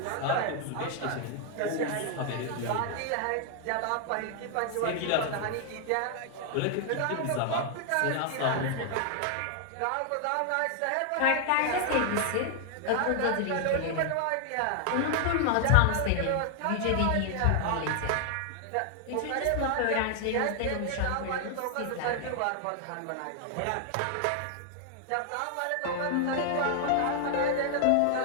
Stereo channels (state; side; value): different; both; correlation 0.00